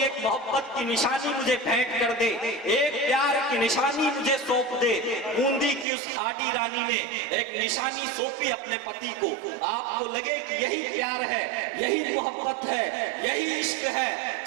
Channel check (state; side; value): drops out; left; at 5.9 s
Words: एक मोहब्बत की निशानी मुझे भेंट कर दे, एक प्यार की निशानी मुझे सौंप दे। बूंदी की उस हाडी रानी ने एक निशानी सौंपी अपने पति को। आपको लगे कि यही प्यार है, यही मोहब्बत है, यही इश्क है।